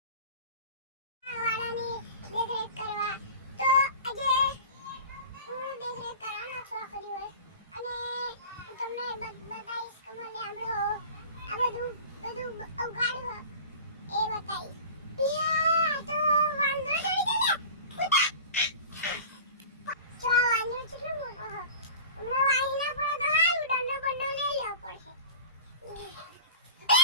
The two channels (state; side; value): inverted; both; correlation -0.38